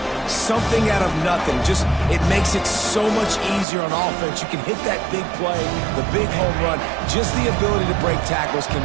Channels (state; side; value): drops out; left; at 3.7 s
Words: something out of nothing. Just, it makes it so much easier on offense. You can hit that big play, the big home run. Just the ability to break tackles